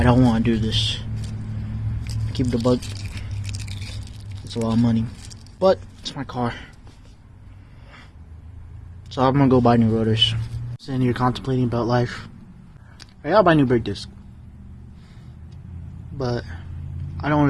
don't want to do this. Keep the bug. It's a lot of money, but it's my car. So I'm gonna go buy new rotors. Sitting here contemplating about life. I gotta buy new brake disc, but I don't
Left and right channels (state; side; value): identical; both; correlation 1.00